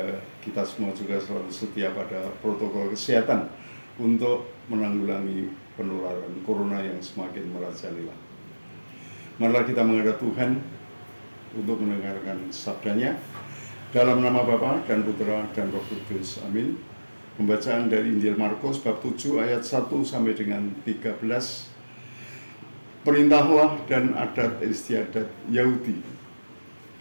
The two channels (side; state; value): both; inverted; correlation -1.00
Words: kita semua juga selalu setia pada protokol kesehatan untuk menanggulangi penularan corona yang semakin merajalela. Marilah kita menghadap Tuhan untuk mendengarkan sabdanya. Dalam nama Bapa dan Putra dan Roh Kudus. Amin. Pembacaan dari Injil Markus bab 7 ayat 1 sampai dengan 13. Perintahlah dan adat istiadat Yahudi.